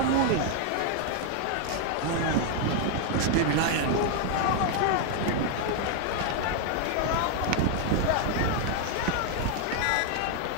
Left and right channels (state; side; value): different; both; correlation 0.00